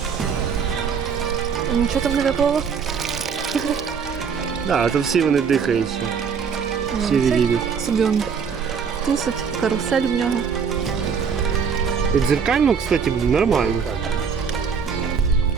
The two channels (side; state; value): left; quieter; 6.3 dB